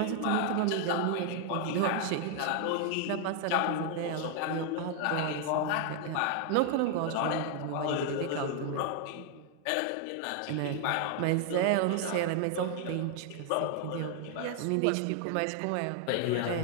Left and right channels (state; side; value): different; both; correlation 0.00